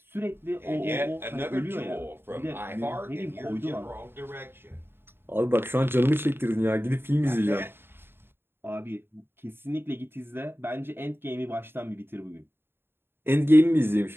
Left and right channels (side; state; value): left; late; 0.11 ms